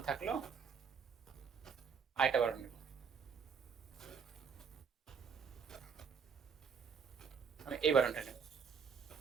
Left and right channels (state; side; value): quieter; left; 6.3 dB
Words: থাকলো, আরেকটা বাটন নেব, আমি এই বাটনটা নেব।